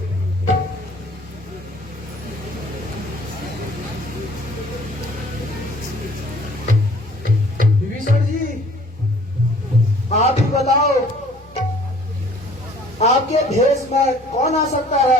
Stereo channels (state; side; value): normal; both; correlation 0.54